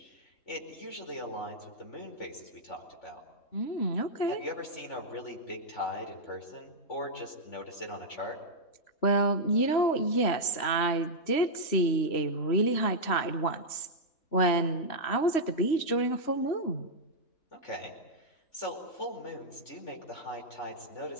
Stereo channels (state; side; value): late; right; 3.1 ms